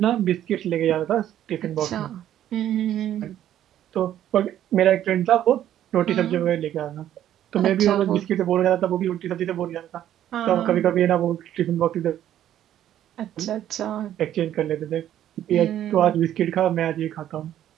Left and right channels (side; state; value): left; quieter; 11.5 dB